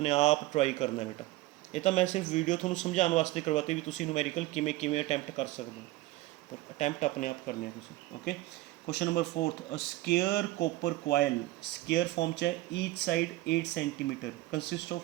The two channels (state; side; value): quieter; left; 18.0 dB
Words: आप ट्राई करना है बेटा। ये तो मैं सिर्फ वीडियो थोड़ा समझाने वास्ते करवाते भी तुम न्यूमेरिकल किमें किमें अटैम्प्ट कर सकते हो, पर अटैम्प्ट अपने आप करने तुम, okay. Question number 4th, a square copper coil, square form च है, each side 8 centimetre, consist